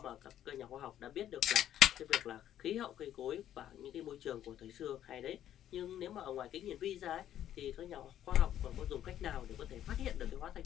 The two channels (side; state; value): right; quieter; 11.3 dB